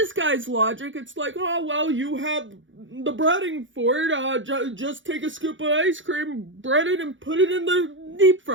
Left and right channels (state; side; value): late; left; 0.56 ms